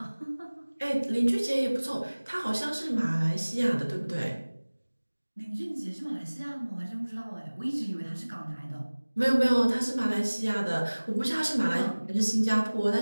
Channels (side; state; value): both; inverted; correlation -1.00